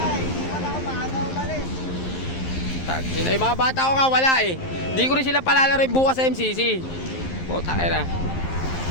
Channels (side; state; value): right; late; 11 ms